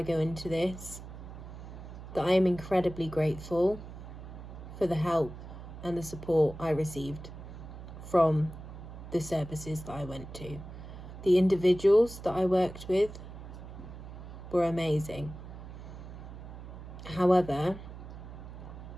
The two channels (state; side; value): noise; right; hum, 12 dB below the sound